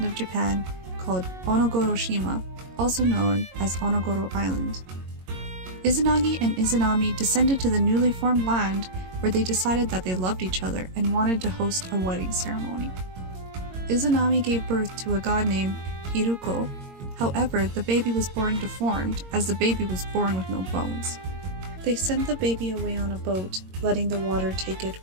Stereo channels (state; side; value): late; left; 22 ms